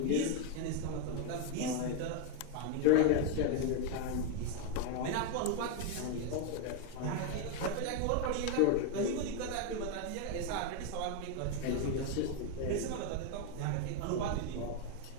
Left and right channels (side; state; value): both; different; correlation 0.01